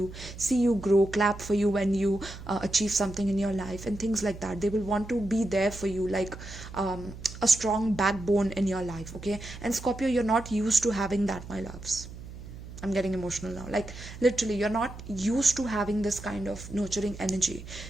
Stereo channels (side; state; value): right; noise; hum, 13 dB below the sound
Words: see you grow, clap for you when you achieve something in your life and things like that. They will want to be there for you, like a strong backbone in your life. Okay, and Scorpio, you're not used to having that, my loves. I'm getting emotional now. Like literally, you're not used to having this kind of nurturing energy.